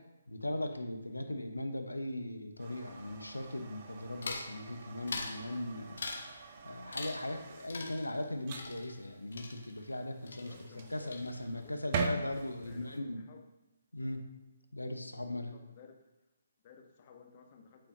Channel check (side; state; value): both; inverted; correlation -0.85